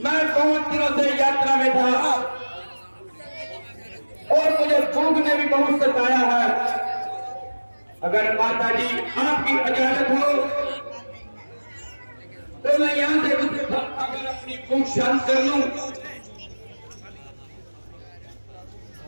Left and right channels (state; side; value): inverted; both; correlation -1.00